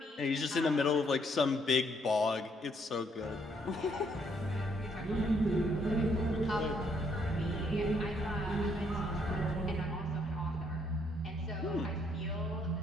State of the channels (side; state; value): both; normal; correlation 0.70